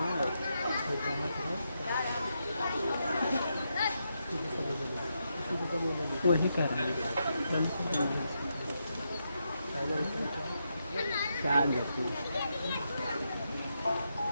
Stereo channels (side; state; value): both; inverted; correlation -0.83